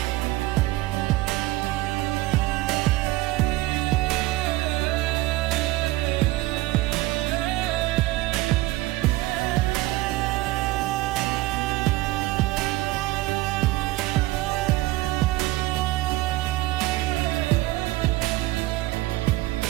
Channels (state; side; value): quieter; left; 18.2 dB